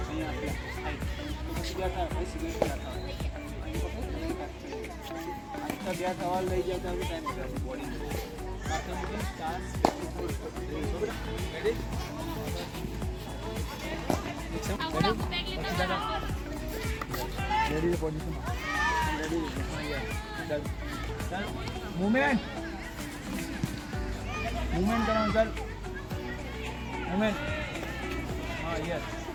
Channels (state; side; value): identical; both; correlation 1.00